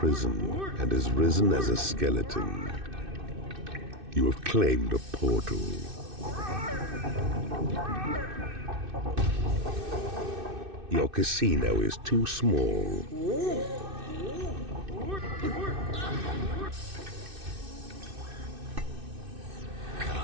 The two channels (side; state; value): left; late; 2.6 ms